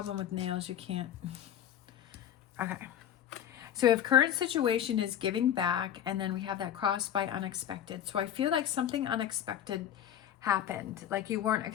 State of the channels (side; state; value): right; quieter; 10.4 dB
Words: with nails, you can't. Okay. So if current situation is giving back, and then we have that crossed by unexpected. So I feel like something unexpected happened, like you weren't